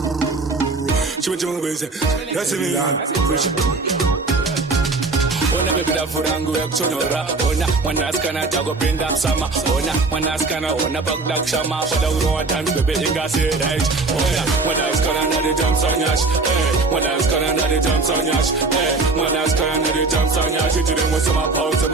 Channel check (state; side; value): quieter; left; 3.7 dB